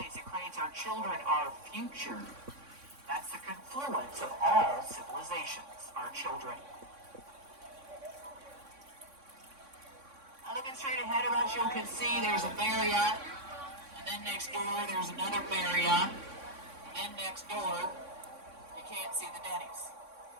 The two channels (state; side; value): late; left; 3.6 ms